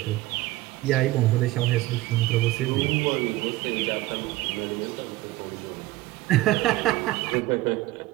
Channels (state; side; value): quieter; left; 17.8 dB